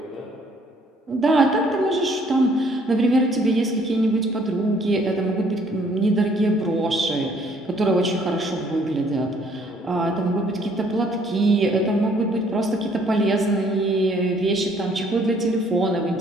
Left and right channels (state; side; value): normal; both; correlation 0.63